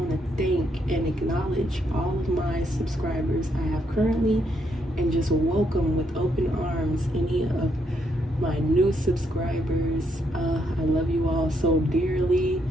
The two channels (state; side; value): normal; both; correlation 0.76